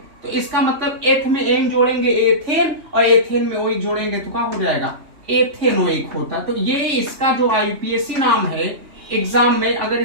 तो इसका मतलब एथ में एन जोड़ेंगे एथेन, और एथेन में ओइक जोड़ेंगे तो क्या हो जाएगा, एथेनोइक होता। तो ये इसका जो IPSC नाम है एग्जाम में, अगर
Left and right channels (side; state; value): left; late; 3.4 ms